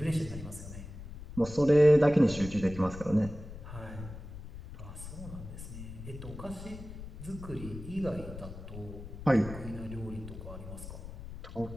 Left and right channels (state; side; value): noise; left; rumble, 12 dB below the sound